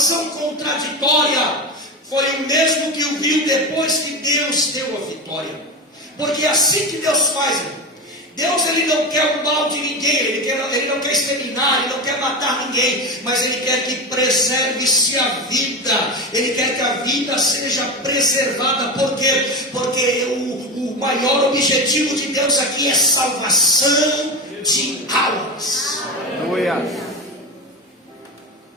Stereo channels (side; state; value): both; normal; correlation 0.20